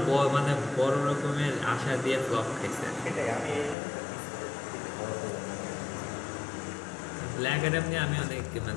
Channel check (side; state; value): right; drops out; at 3.8 s